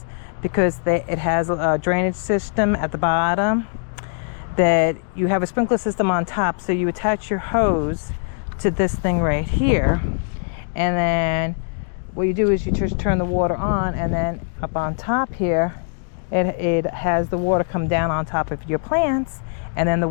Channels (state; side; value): silent; right; digital silence